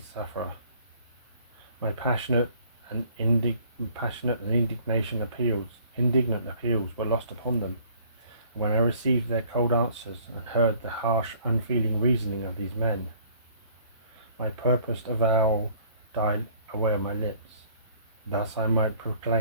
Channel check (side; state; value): both; inverted; correlation -0.57